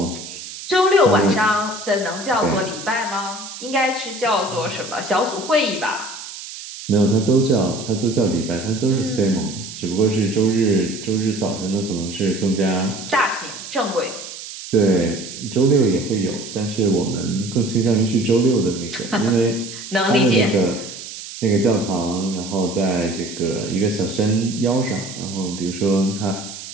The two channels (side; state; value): right; noise; hiss, 12 dB below the sound